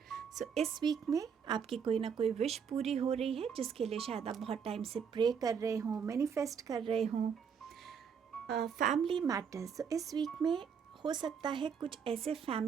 सो इस वीक में आपकी कोई ना कोई विश पूरी हो रही है, जिसके लिए शायद आप बहुत टाइम से प्रे कर रहे हों, मैनिफेस्ट कर रहे हों। फैमिली मैटर्स, तो इस वीक में हो सकता है कुछ ऐसे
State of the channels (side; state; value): left; quieter; 6.9 dB